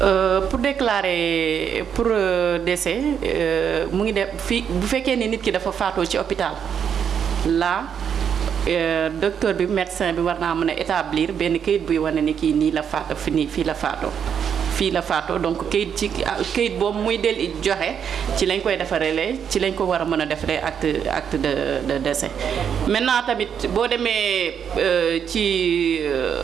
Pour déclarer pour décès mu ngi def fii bu fekkee ni nit ki dafa faatoo ci hôpital là docteur bi médecin bi war naa mën a établir benn kayit buy wane ni kii nii la faat fii la faatoo. fii la faatoo donc kayit boobu muy del joxe ci lañ koy defaree ci lañ ko war a mën a defaree acte de décès. maintenant tamit boo demee ci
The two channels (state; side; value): quieter; left; 7.9 dB